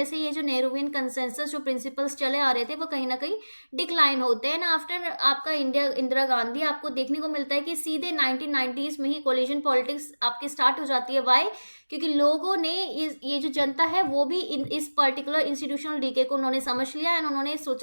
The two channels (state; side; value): inverted; both; correlation -1.00